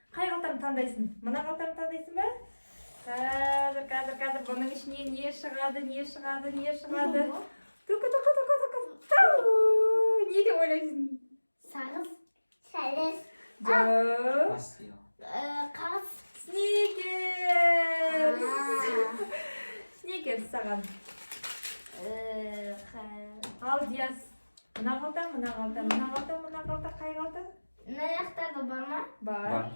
Қай қалтамды таңдайсың? Мына қалтамды таңдайсың ба? Қазір бұның ішіне не шығады? Не деп ойлайсың? Сағыз, сәлес, қағыз, Сникерс саған. Ал Диас, мына қалта, қай қалта? мына жақтарда бар ма? Бар.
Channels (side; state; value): both; inverted; correlation -1.00